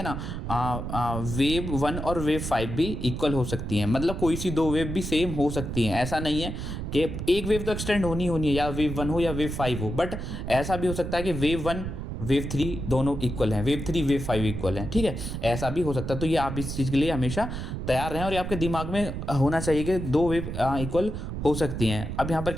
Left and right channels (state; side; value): noise; right; rumble, 5 dB below the sound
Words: ना। वेव 1 और वेव 5 भी इक्वल हो सकती हैं, मतलब कोई सी दो वेव भी सेम हो सकती हैं। ऐसा नहीं है कि एक वेव तो एक्सटेंड होनी है, या वेव 1 हो या वेव 5 हो, बट ऐसा भी हो सकता है कि वेव 1 वेव 3 दोनों इक्वल हैं, वेव 3 वेव 5 इक्वल हैं, ठीक है, ऐसा भी हो सकता है। तो ये आप इस चीज़ के लिए हमेशा तैयार रहें और ये आपके दिमाग में होना चाहिए कि दो वेव इक्वल हो सकती हैं। अब यहाँ पर